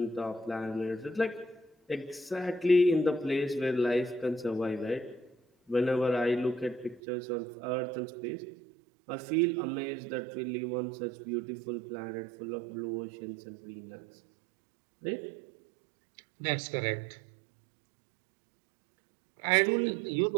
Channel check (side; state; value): left; drops out; at 7.0 s